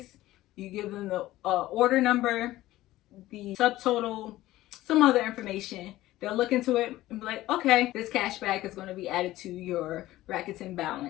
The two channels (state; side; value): quieter; right; 16.1 dB